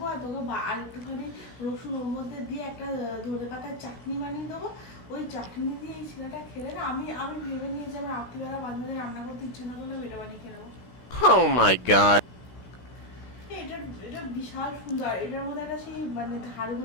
আর তোকে আর একটুখানি রসুন ওর মধ্যে দিয়ে একটা ধনে পাতার চাটনি বানিয়ে দেবো। ওই চাটনি দিয়ে এই ছেলেটা খেলে না, আমি ভেবে নিয়ে যে আমার রাত্রিবেলা মাঝে মাঝে রান্না করতে ইচ্ছে না করলে এটা বানিয়ে খেয়ে নেবো। Oh my god. এটা বিশাল সুন্দর। এটার মধ্যে একটা সেই মানে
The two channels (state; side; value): late; right; 16 ms